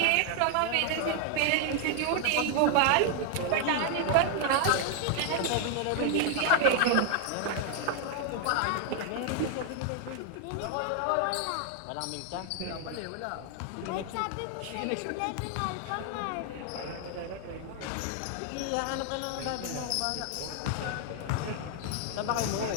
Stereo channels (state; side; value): different; both; correlation 0.00